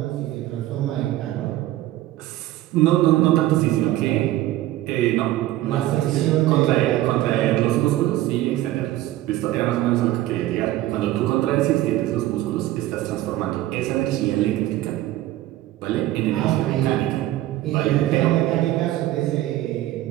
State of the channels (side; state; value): left; quieter; 15.2 dB